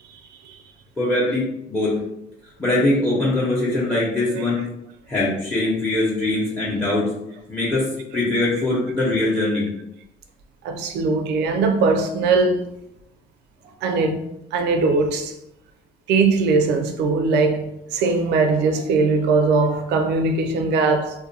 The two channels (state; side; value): normal; both; correlation 0.42